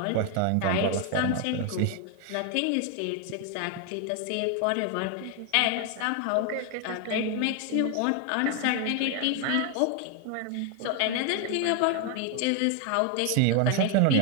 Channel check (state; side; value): different; both; correlation 0.01